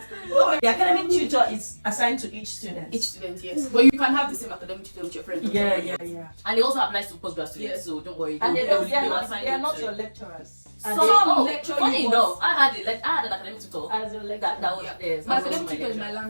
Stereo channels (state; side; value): inverted; both; correlation -1.00